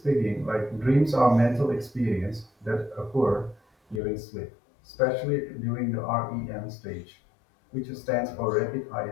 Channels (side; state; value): right; drops out; at 4.0 s